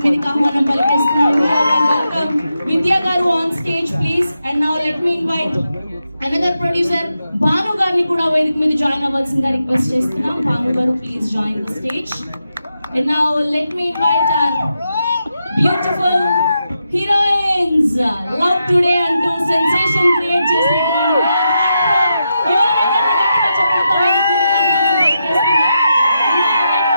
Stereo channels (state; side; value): inverted; both; correlation -0.86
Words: మీదకి ఆహ్వానం పలికిస్తున్నాం. Welcome Vidya garu on stage please. And now let me invite another producer Banu garni kuda వేదిక మీద join avvalsinదిగా request చేస్తున్నాం. Banu garu, please join the stage. And now let me invite our beautiful heroines, love today అంటూ sensation create చేసినటువంటి